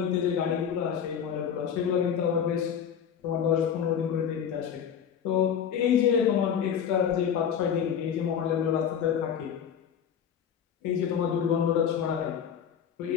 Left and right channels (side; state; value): right; quieter; 8.2 dB